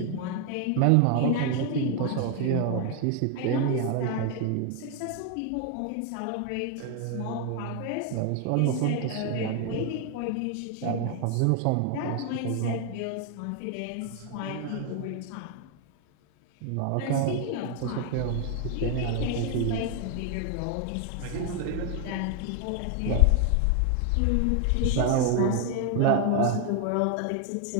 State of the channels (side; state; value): both; different; correlation 0.01